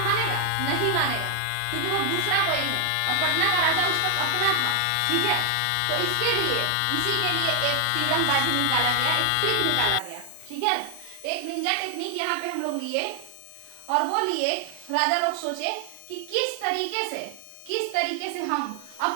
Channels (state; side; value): different; both; correlation 0.00